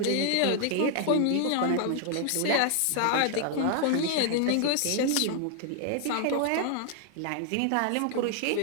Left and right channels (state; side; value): different; both; correlation 0.00